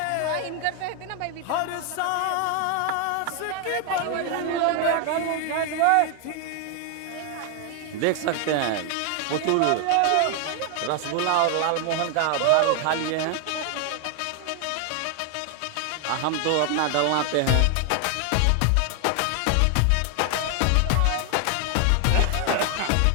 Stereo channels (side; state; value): both; different; correlation 0.00